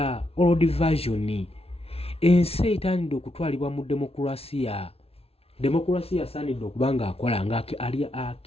old version ensi etandidde okutwalibwa mu demokrasiya. Demokrasiya asaanidde okuba nga akola nga ali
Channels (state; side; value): late; right; 0.29 ms